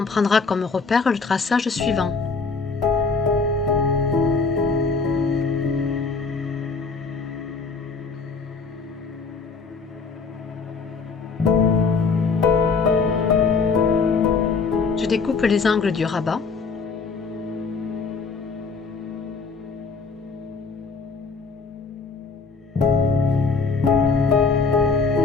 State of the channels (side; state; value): right; quieter; 4.6 dB